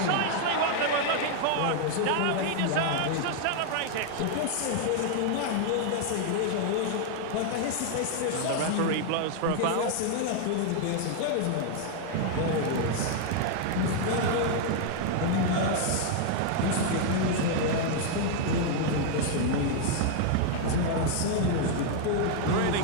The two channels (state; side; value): different; both; correlation 0.00